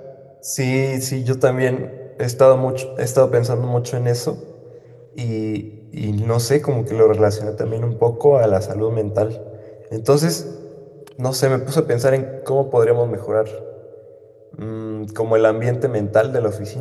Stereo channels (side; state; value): both; identical; correlation 1.00